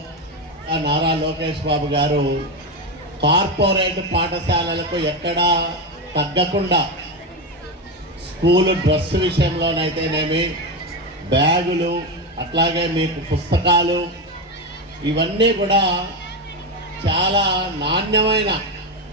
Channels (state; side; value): normal; both; correlation 0.13